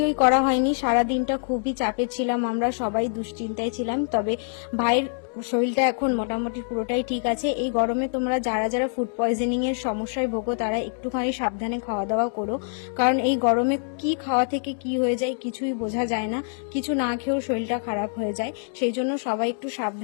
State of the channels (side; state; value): right; silent; digital silence